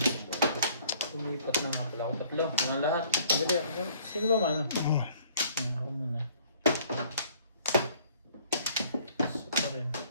Lumipat na nga pala ako. Tatlo. Mga lahat. Dali ako. Sino ba mano? Oh. Ako muna. So pa rin.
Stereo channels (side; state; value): both; inverted; correlation -0.58